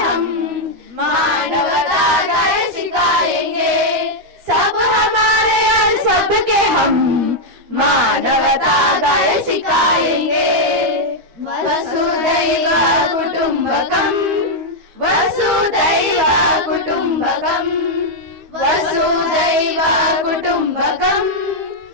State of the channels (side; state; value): left; late; 13 ms